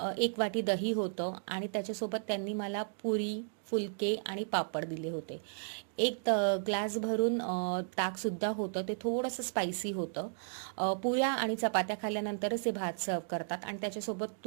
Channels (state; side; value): silent; left; digital silence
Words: 1 वाटी दही होतं, आणि त्याच्यासोबत त्यांनी मला पुरी, फुलके आणि पापड दिले होते. एक ग्लास भरून ताकसुद्धा होतं, ते थोडंसं स्पायसी होतं. पुऱ्या आणि चपात्या खाल्ल्यानंतरच ते भात सर्व करतात आणि त्याच्यासोबत